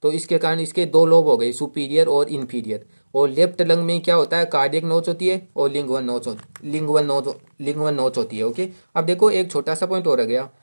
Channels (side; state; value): both; inverted; correlation -1.00